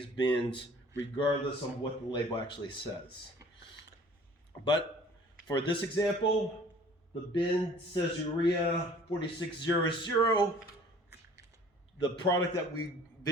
bins, regardless of what the label actually says. But for this example, the bin says urea 4600. The product that we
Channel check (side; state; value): both; normal; correlation 0.51